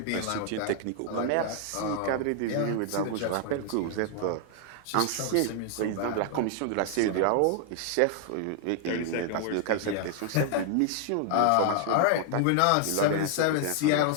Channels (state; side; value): different; both; correlation 0.00